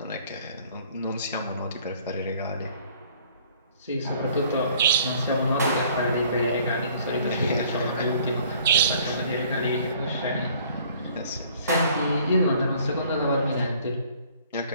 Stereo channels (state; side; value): inverted; both; correlation -0.57